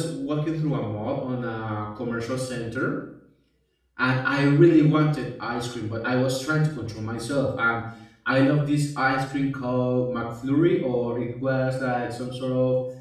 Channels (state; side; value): identical; both; correlation 1.00